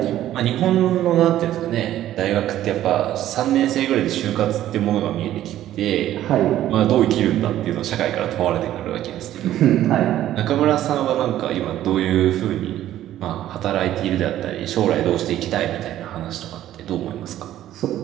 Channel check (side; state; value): left; quieter; 12.8 dB